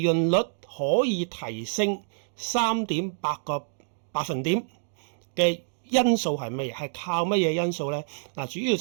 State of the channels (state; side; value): silent; left; digital silence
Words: 潤率可以提升3.8個百分點嘅因素係乜嘢？係靠乜嘢因素咧？嗱，主要